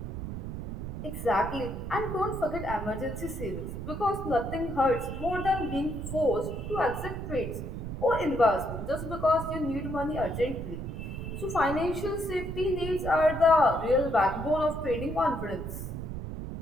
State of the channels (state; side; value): noise; right; rumble, 6 dB below the sound